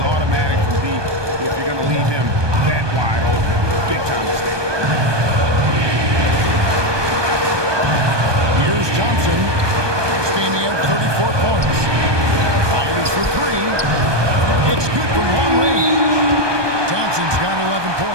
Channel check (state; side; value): late; left; 1.2 ms